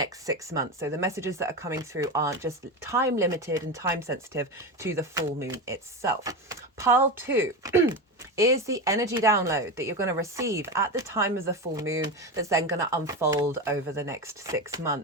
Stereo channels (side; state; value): both; normal; correlation 0.19